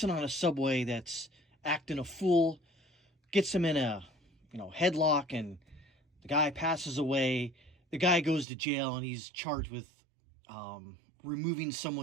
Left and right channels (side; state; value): left; drops out; at 8.5 s